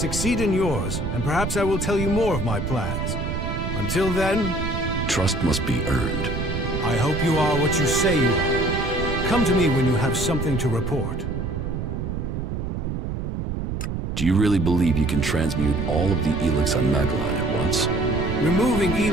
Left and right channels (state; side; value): noise; right; rumble, 3 dB below the sound